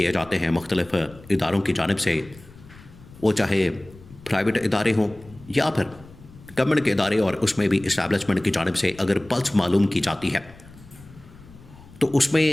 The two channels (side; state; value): left; noise; rumble, 21 dB below the sound